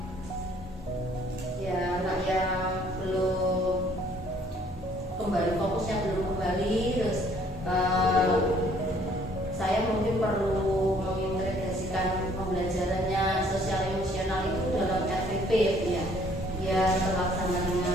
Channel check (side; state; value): both; normal; correlation 0.60